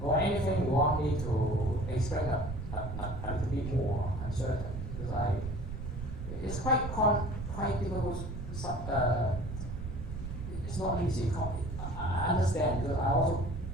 Or anything you want me to explain a little bit more uncertain, because it's quite difficult. It's not easy. I understand, because I also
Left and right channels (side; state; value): right; noise; rumble, 6 dB below the sound